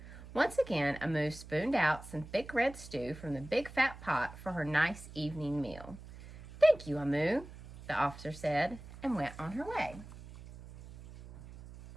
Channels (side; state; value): right; noise; hum, 16 dB below the sound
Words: Once again, Omu spooned out some thick red stew from the big fat pot for her nice evening meal. "Thank you, Omu," the officer said, and went on her way.